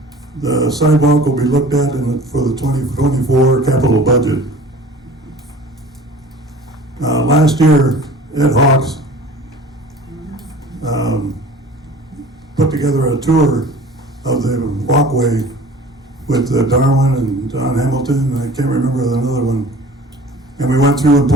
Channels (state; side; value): normal; both; correlation 0.44